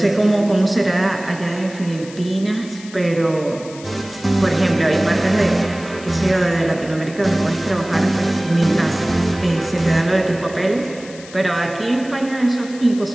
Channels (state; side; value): noise; left; hiss, 18 dB below the sound